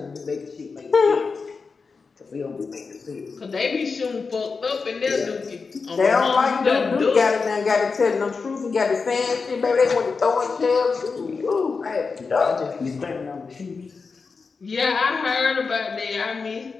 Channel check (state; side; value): quieter; right; 4.8 dB